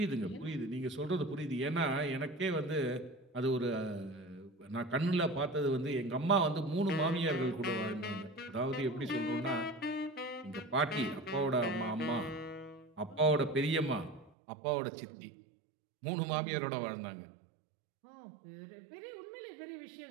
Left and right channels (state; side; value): drops out; left; at 14.3 s